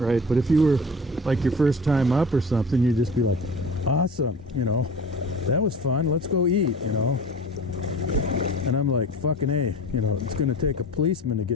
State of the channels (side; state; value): both; normal; correlation 0.38